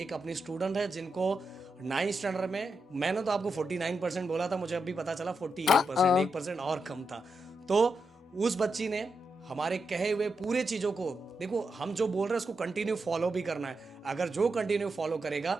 अपनी स्टूडेंट है जिनको 9th स्टैंडर्ड में, मैंने तो आपको 49% बोला था, मुझे अभी पता चला 48%, 1% और कम था। तो उस बच्ची ने हमारे कहे हुए पूरे चीज़ों को, देखो हम जो बोल रहे हैं उसको कंटिन्यू फॉलो भी करना है। अगर जो कंटिन्यू फॉलो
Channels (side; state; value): both; normal; correlation 0.85